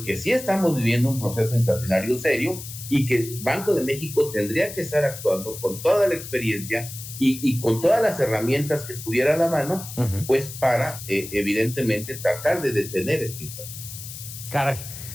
sí estamos viviendo un proceso inflacionario serio y que el Banco de México tendría que estar actuando con toda la experiencia y con todas las herramientas que tuviera a la mano, pues para, evidentemente, tratar de detener esta inflación. Caray,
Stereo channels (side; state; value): left; noise; hiss, 11 dB below the sound